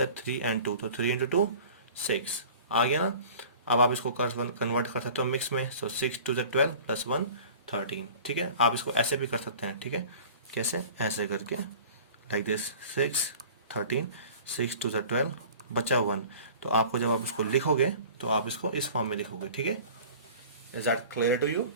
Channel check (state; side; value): inverted; both; correlation -0.43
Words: 3 एंड 2, तो 3 इंटू 2 6 आ गया ना? अब आप इसको कन्वर्ट कर सकते हो मिक्स में। सो 6 2 ज़ा 12 प्लस 1 13, ठीक है? आप इसको ऐसे भी कर सकते हैं, ठीक है? कैसे, ऐसे करके लाइक दिस 6 13, 6 2 ज़ा 12, बचा 1। तो आपको जब आप इसको लिखोगे तो आप इसको इस फॉर्म में लिखोगे, ठीक है? Is that clear to you?